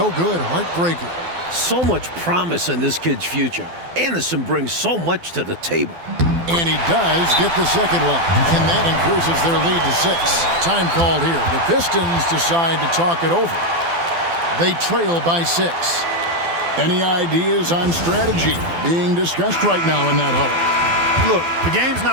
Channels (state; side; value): late; left; 12 ms